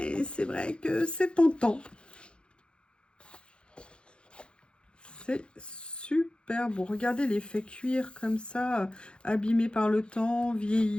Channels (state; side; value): late; right; 0.055 ms